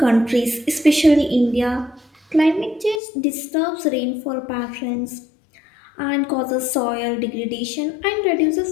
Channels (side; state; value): right; drops out; at 3.0 s